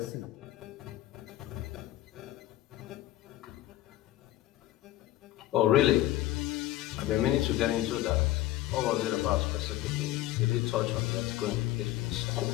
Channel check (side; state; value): right; quieter; 15.3 dB